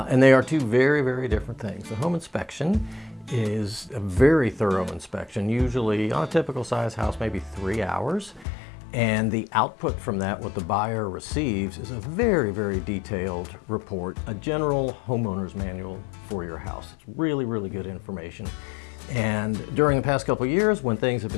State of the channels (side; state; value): right; drops out; at 8.5 s